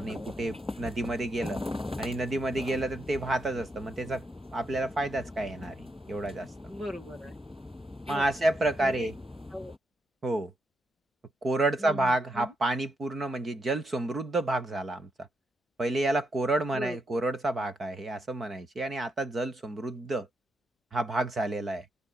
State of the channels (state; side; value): normal; both; correlation 0.80